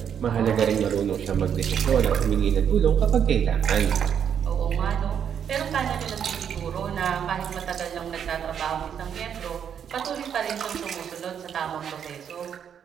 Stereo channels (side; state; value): left; quieter; 8.3 dB